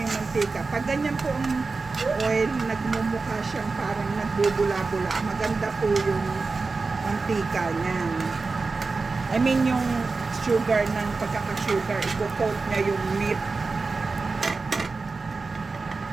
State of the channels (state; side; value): quieter; left; 4.1 dB